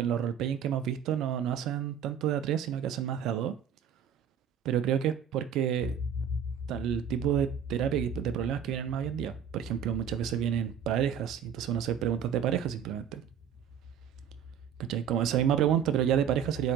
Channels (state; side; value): quieter; left; 8.2 dB